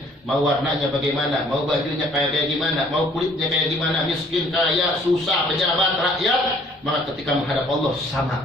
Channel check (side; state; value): both; normal; correlation 0.59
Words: Mau warnanya bagaimana, mau bajunya kayak gimana, mau kulitnya kayak gimana, miskin, kaya, susah, pejabat, rakyat, maka ketika menghadap Allah